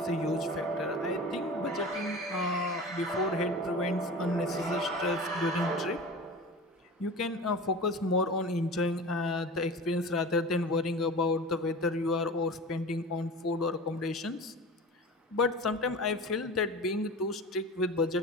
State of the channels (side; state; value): both; normal; correlation 0.35